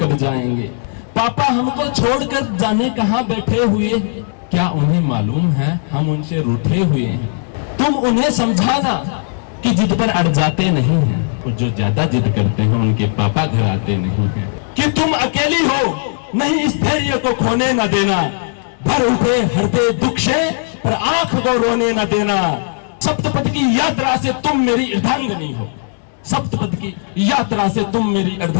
जाएंगे। पापा हमको छोड़कर जाने कहाँ बैठे हुए हैं, क्या उन्हें मालूम है हम उनसे रूठे हुए हैं। तुम उन्हें समझाना कि जिद पर अड़ जाते नहीं हैं, और जो ज्यादा जिद करते हैं उनके पापा घर आते नहीं हैं। कि तुम अकेली हो नहीं इस धैर्य को खोने न देना, भर उठे हृदय दुख से पर आंख को रोने न देना। सप्तपद की यात्रा से तुम मेरी अर्धांगिनी हो, सप्तपद की यात्रा से तुम मेरी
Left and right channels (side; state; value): right; silent; digital silence